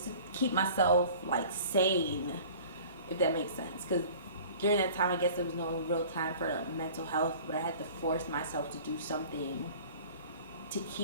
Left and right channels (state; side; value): inverted; both; correlation -0.45